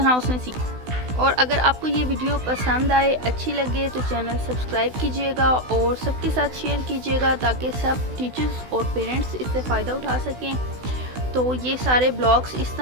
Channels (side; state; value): left; late; 16 ms